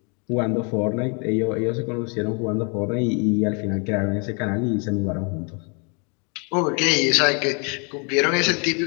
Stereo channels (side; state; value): right; quieter; 35.1 dB